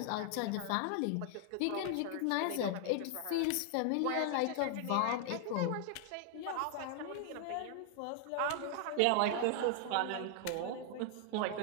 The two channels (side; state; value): both; different; correlation 0.00